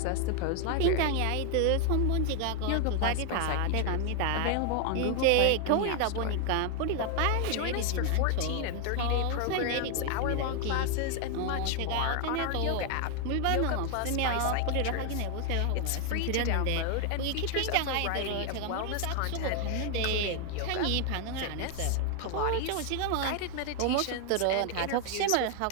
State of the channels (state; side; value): different; both; correlation 0.00